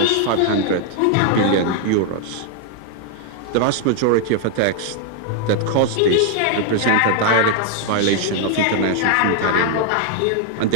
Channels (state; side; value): different; both; correlation 0.00